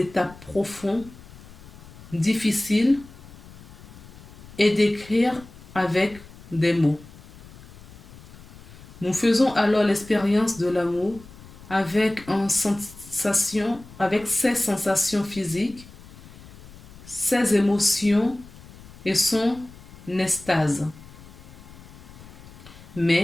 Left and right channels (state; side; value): noise; left; rumble, 19 dB below the sound